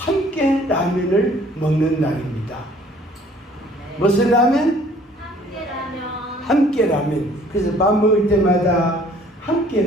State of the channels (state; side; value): normal; both; correlation 0.56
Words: 라면을 먹는 날입니다. 무슨 라면? 함께 라면. 함께 라면. 그래서 밥 먹을 때마다 함께